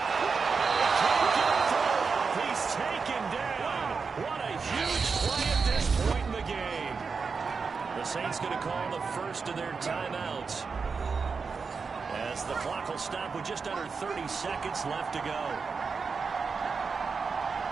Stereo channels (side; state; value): left; quieter; 5.1 dB